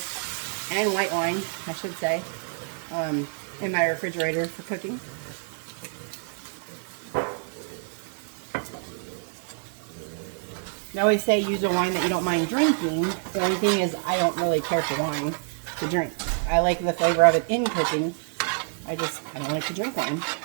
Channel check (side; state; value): left; silent; 58 dB below the other